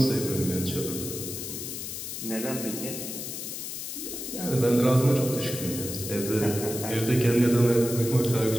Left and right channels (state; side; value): noise; left; hiss, 7 dB below the sound